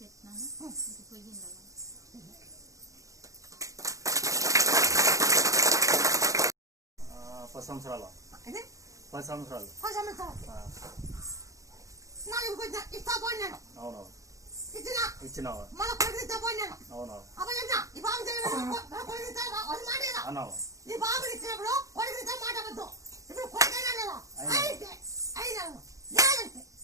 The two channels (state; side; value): late; left; 0.16 ms